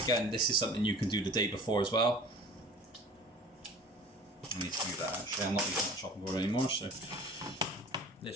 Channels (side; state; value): both; normal; correlation 0.44